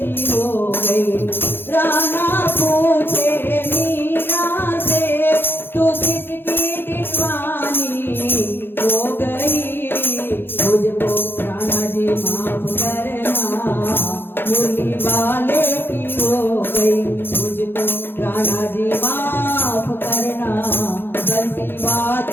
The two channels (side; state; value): right; late; 0.10 ms